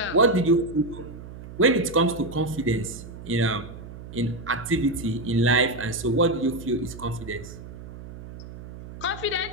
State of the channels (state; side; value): noise; right; hum, 14 dB below the sound